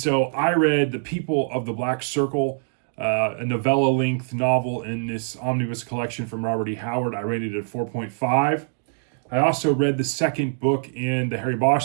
I read The People of the Black Circle, a novella-length novel in this omnibus collection from Robert E. Howard. I rated it at 4.5. I also read the second book in the Harry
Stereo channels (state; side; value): silent; left; digital silence